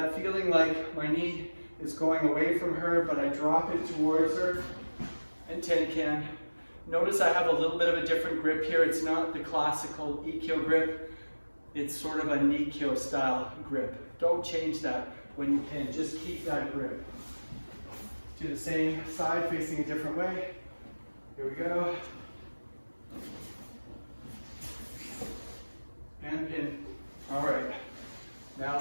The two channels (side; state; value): both; inverted; correlation -1.00